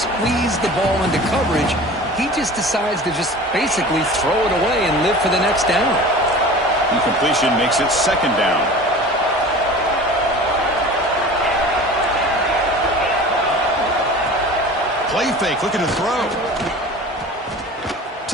the ball into coverage, he just decides to just basically throw it away and live for the next down. Incompletion makes it 2nd down. Play fake, looking to throw.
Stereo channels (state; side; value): normal; both; correlation 0.39